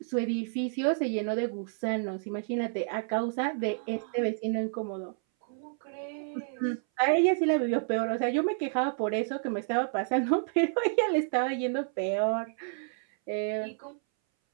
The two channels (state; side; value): silent; left; 58 dB below the other